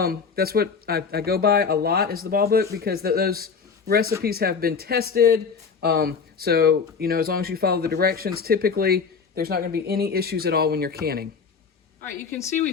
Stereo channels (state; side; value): quieter; right; 5.6 dB